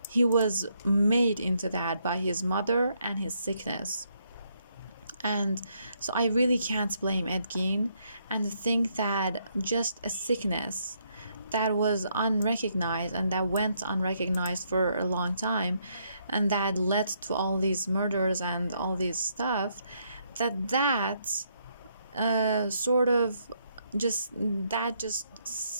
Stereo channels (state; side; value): inverted; both; correlation -0.74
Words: He was made into that by his mother and his sickness. And so I really can't blame Ed Gein, and think that just a sickness that was unrecognized and that went unrecognized for a long time, and that led to all these murders and all this stuff, that sort of just